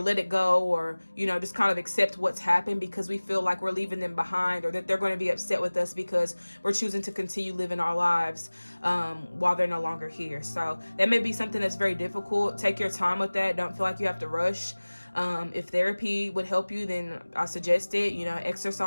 let it go or, just kind of accept what's happened because we feel like we're leaving them behind or that they're going to be upset with us because we're choosing to continue living our lives while they're no longer here. So that may be something that's very difficult. Take your time with that. Don't feel like you have to rush. If therapy would help you, then I suggest it.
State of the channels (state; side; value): inverted; both; correlation -1.00